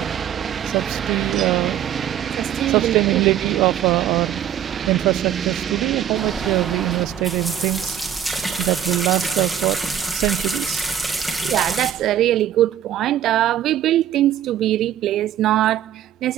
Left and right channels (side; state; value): left; quieter; 10.4 dB